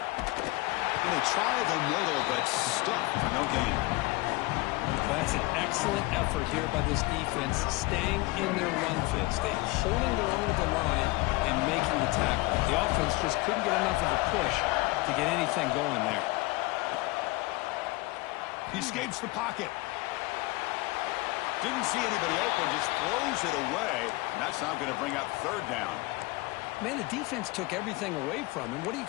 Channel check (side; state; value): right; quieter; 22.2 dB